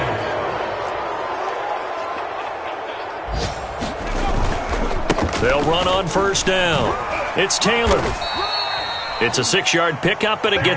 They'll run on first down. It's Taylor. It's a 6-yard pickup, and it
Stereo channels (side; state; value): both; identical; correlation 1.00